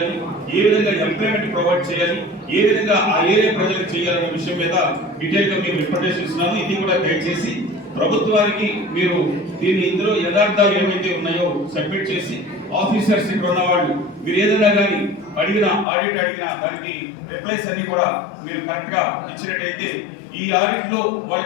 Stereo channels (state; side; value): drops out; right; at 15.9 s